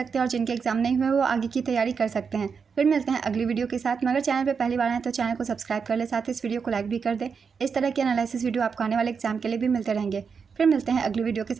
हैं और जिनके एग्जाम नहीं हुए वो आगे की तैयारी कर सकते हैं। फिर मिलते हैं अगली वीडियो के साथ। मगर चैनल पे पहली बार आए तो चैनल को सब्सक्राइब कर ले, साथ ही इस वीडियो को लाइक भी कर दे। इस तरह की एनालिसिस वीडियो आपको आने वाले एग्जाम के लिए भी मिलते रहेंगे। फिर मिलते हैं अगली वीडियो के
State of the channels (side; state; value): left; quieter; 5.9 dB